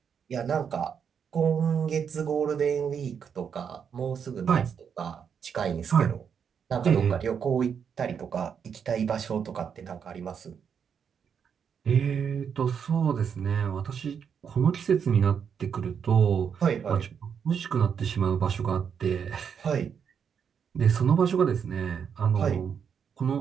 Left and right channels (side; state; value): left; quieter; 7.2 dB